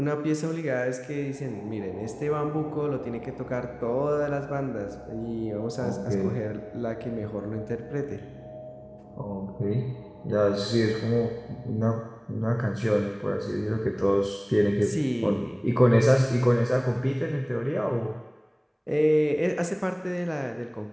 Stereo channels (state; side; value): identical; both; correlation 1.00